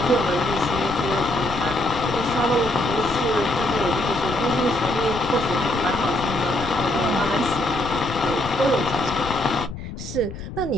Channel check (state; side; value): noise; left; rumble, 10 dB below the sound